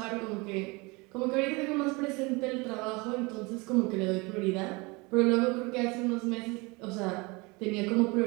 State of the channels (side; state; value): left; quieter; 26.4 dB